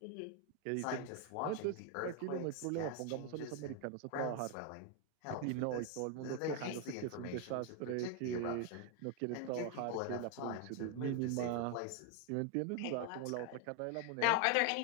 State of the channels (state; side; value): different; both; correlation 0.01